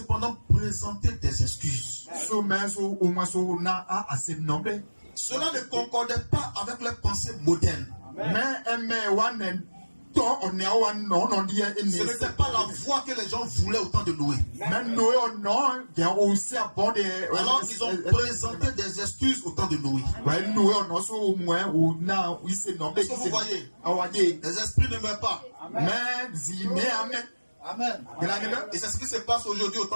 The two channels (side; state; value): both; inverted; correlation -1.00